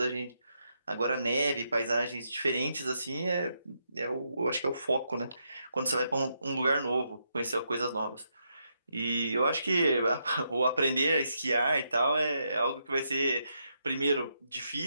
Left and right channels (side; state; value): both; inverted; correlation -0.80